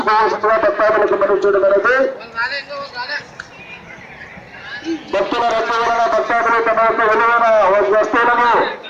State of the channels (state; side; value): identical; both; correlation 1.00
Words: భక్తాదులకు మనం చేయడం అనేది భక్తుల రద్దు వలన భక్తాదులు తమ యొక్క విలువైన వస్తువులను